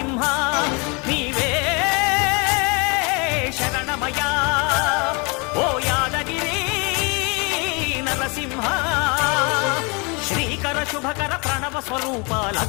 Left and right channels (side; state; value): right; quieter; 31.1 dB